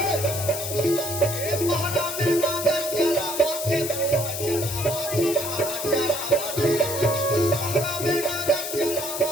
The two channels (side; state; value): left; noise; hiss, 5 dB below the sound